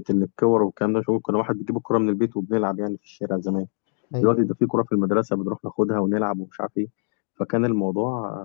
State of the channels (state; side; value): silent; right; digital silence